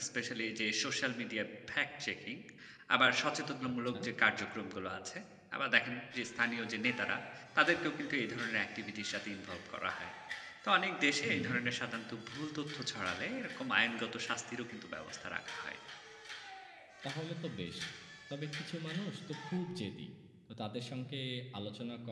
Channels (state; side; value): identical; both; correlation 1.00